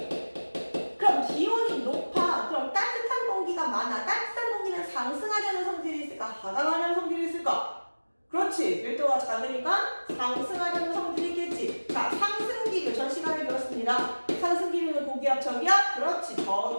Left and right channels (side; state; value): both; inverted; correlation -1.00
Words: 그럼 기온이 높아. 그럼 따뜻한 공기가 많아. 따뜻한 공기는 상승하려는 성질이 있을까? 하강하려는 성질이 있을까? 그렇지. 밀도가 작으니까 상승하려는 성질이 있겠지. 자, 상승기류 전 시간에 배웠습니다. 상승기류는 고기압, 저기압? 그렇지.